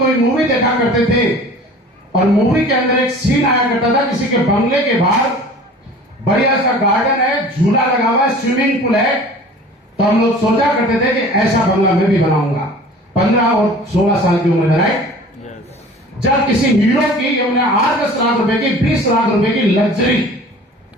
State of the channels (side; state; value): both; normal; correlation 0.44